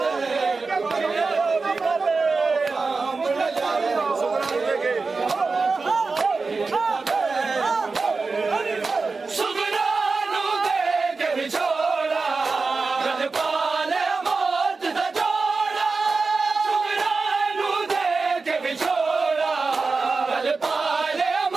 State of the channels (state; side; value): quieter; left; 4.2 dB